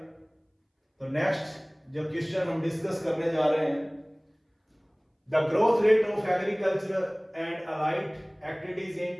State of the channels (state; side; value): identical; both; correlation 1.00